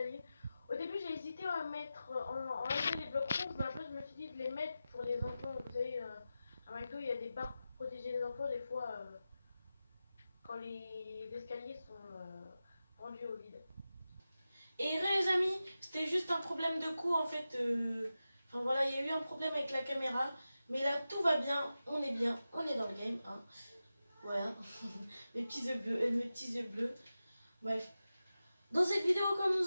Au début, j'ai hésité à mettre, enlever les blocs ronds, mais après, je me suis dit de les mettre pour les enfants. Vous savez, à McDo, il y a des barres pour protéger les enfants, des fois, quand les escaliers sont rendus au vide. Et les amis, c'était juste un problème de coût, en fait. Enfin, voilà, il y a eu un problème avec la caméra. Mais là, tout va bien, on est dans le game, hein. Voilà, mes petits yeux bleus. Bref, dans cette vidéo, comme nous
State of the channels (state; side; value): inverted; both; correlation -0.93